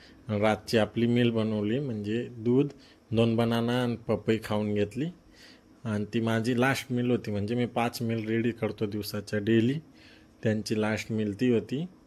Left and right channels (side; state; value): both; identical; correlation 1.00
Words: रातची आपली मील बनवली, म्हणजे दूध, 2 बनाना आणि पपई खाऊन घेतली. आणि ती माझी लास्ट मील होती, म्हणजे मी 5 मील रेडी करतो दिवसाच्या डेली. त्यांची लास्ट मील ती होती.